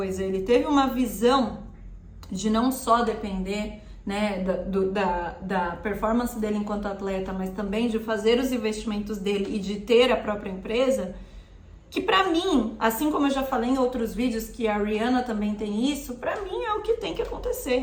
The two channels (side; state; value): both; identical; correlation 1.00